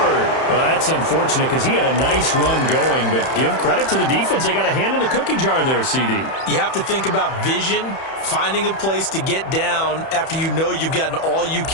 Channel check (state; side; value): late; right; 31 ms